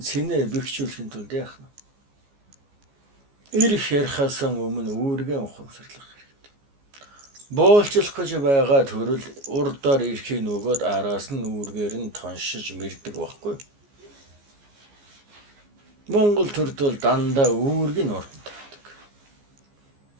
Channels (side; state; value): left; late; 14 ms